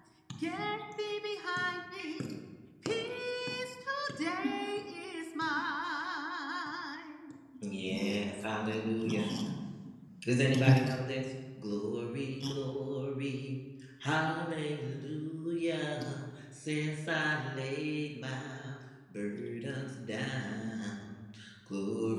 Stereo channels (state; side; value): identical; both; correlation 1.00